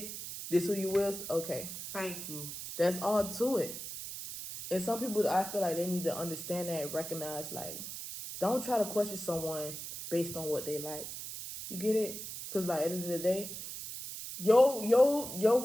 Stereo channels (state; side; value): noise; right; hiss, 8 dB below the sound